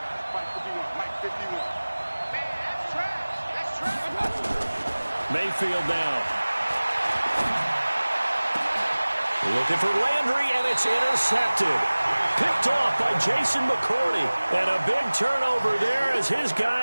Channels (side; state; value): both; inverted; correlation -1.00